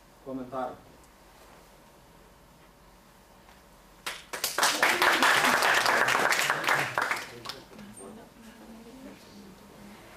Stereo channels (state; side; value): identical; both; correlation 1.00